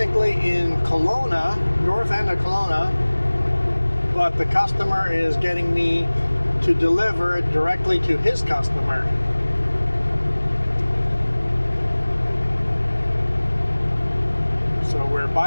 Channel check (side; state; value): both; inverted; correlation -1.00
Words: in Kelowna, north end of Kelowna, but the customer is getting me to deliver it directly to his customer. So we're